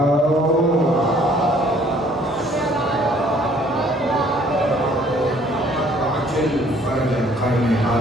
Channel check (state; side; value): normal; both; correlation 0.59